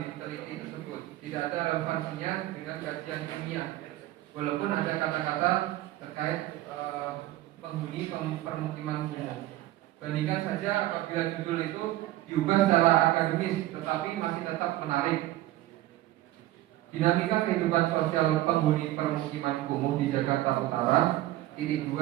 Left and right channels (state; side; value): quieter; left; 15.8 dB